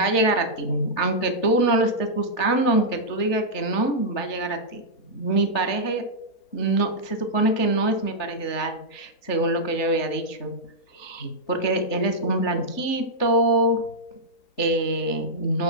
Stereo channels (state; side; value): late; right; 3.4 ms